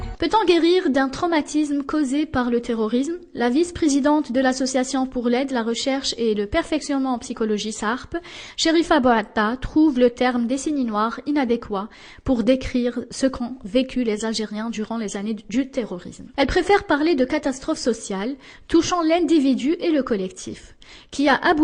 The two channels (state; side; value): identical; both; correlation 1.00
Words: Peut-on guérir d'un traumatisme causé par le terrorisme? La vice-présidente de l'Association pour l'aide, la recherche et le perfectionnement en psychologie SARP, Sherifa Bouatta, trouve le terme décennie noire inadéquat pour décrire ce qu'ont vécu les Algériens durant les années du terrorisme. Elle préfère parler de catastrophe sociale touchant l'individu et le collectif, qui a